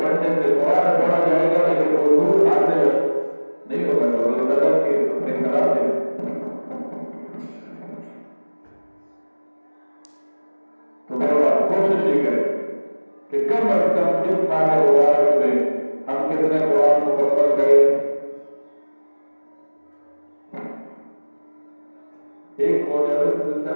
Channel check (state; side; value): inverted; both; correlation -1.00